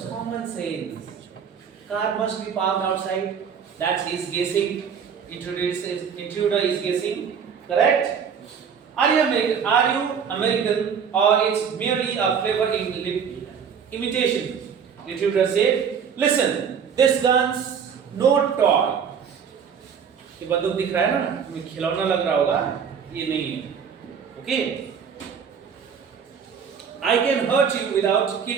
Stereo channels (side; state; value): left; quieter; 7.1 dB